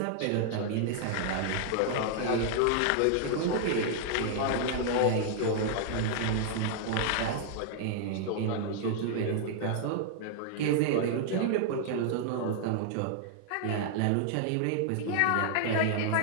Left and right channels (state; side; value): different; both; correlation 0.00